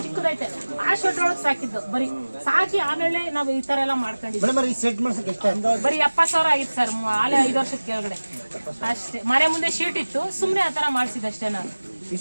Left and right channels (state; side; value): inverted; both; correlation -1.00